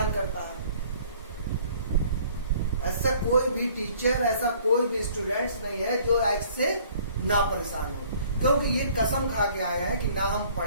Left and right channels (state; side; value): inverted; both; correlation -0.56